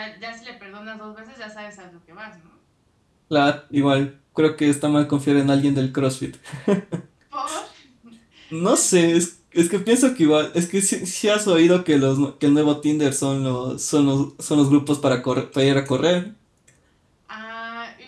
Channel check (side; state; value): both; identical; correlation 1.00